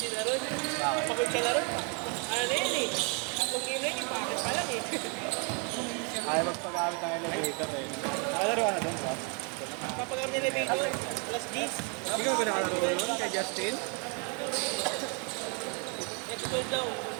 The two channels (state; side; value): quieter; left; 36.5 dB